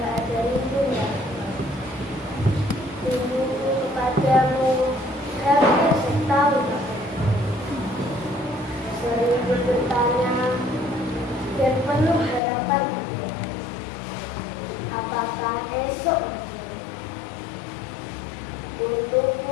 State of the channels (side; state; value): right; drops out; at 12.4 s